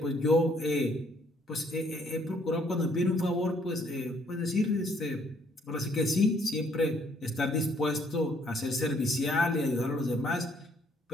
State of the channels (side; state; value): both; normal; correlation 0.66